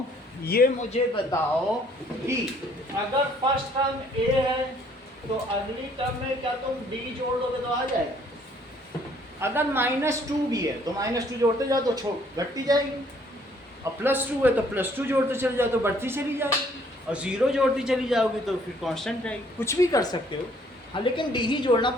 ये मुझे बताओ कि अगर फर्स्ट टर्म ए है तो अगली टर्म में क्या तुम डी जोड़ दोगे तो आ जाएगा। अगर -2 भी है तो -2 जोड़ते जाओ तो घटती जाएगी, और +2 है तो +2 जोड़ते चले जाओ तो बढ़ती चली जाएगी, और 0 जोड़ती चली जाओगी तो फिर कांस्टेंट रहेगी। कुछ भी कर सकते हो, हाँ, लेकिन डी ही जोड़ना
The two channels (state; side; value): normal; both; correlation 0.62